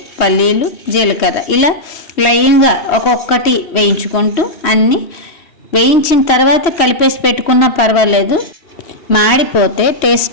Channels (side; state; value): right; late; 3.1 ms